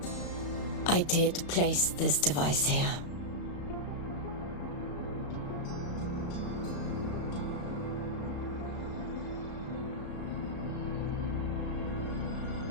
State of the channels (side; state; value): right; late; 35 ms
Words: I did place this device here.